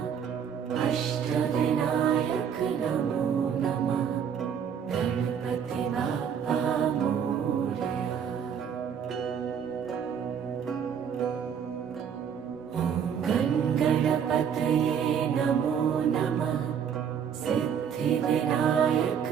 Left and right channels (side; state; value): left; quieter; 7.8 dB